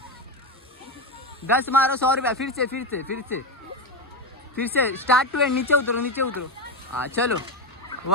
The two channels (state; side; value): normal; both; correlation 0.14